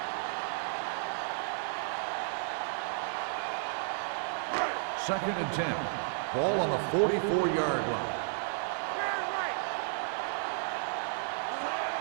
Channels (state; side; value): silent; left; digital silence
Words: Second and 10. Ball on the 44-yard line.